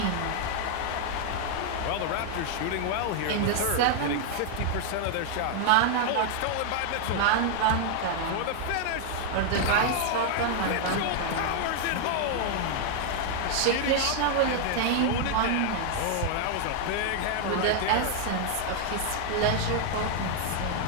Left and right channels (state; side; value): different; both; correlation 0.00